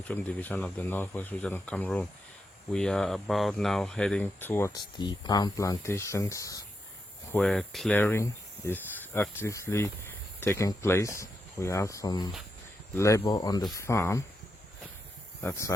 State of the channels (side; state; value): both; normal; correlation 0.84